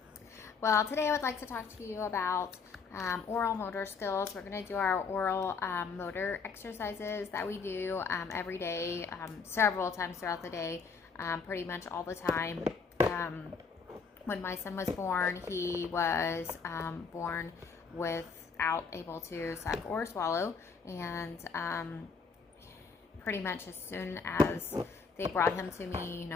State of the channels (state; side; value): quieter; right; 5.2 dB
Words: Well, today I would like to talk to you about oral motor skills. We're going to do our oral motor exercises that we do every day, several times throughout the day, pretty much all the time. When my son was born, he was born without able to suck or swallow, and pretty much as soon as they brought him to me, you